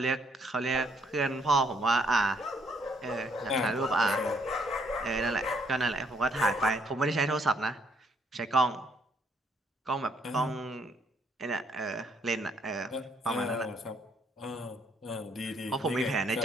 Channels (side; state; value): both; normal; correlation 0.68